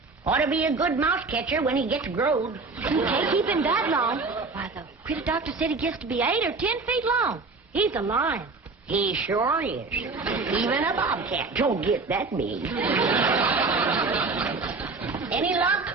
Ought to be a good mouse catcher when he gets growed. You can't keep him that long. Why, the critter doctor said he gets to be 8 or 10 feet long. He's a lion. He sure is. Even a bobcat don't get that big. Any luck?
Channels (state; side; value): quieter; left; 4.0 dB